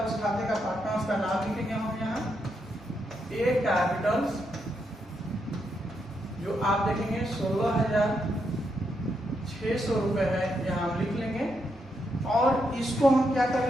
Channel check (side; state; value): both; normal; correlation 0.80